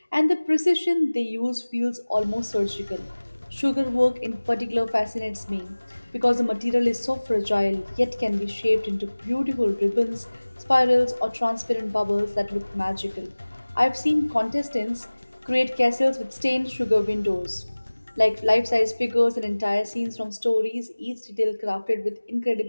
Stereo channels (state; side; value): inverted; both; correlation -1.00